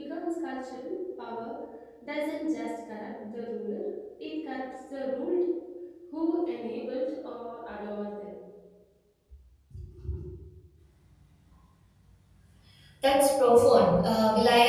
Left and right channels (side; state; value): both; identical; correlation 1.00